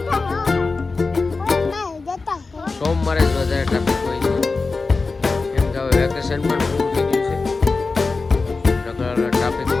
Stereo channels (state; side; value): quieter; right; 4.0 dB